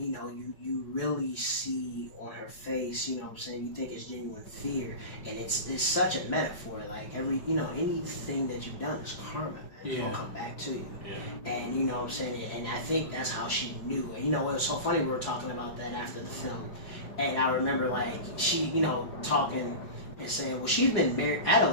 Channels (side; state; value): right; late; 4.8 ms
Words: know, you really see on her face, you know what I'm saying, you think it's genuine fear, and it's such a metaphor. Like anything that you've done is karma, man. It's gonna come back to you. And you know what I'm saying, and I think that's how she knew. And you know, it was so funny, we were talking about that after the film, and I remember like she, you know, talking and saying, well, she's been married,